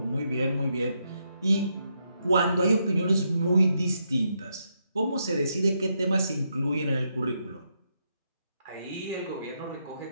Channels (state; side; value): inverted; both; correlation -0.80